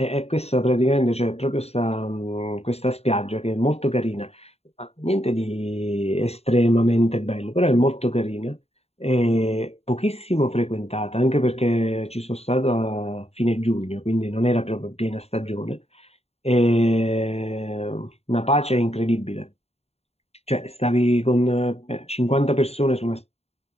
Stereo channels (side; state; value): right; late; 0.30 ms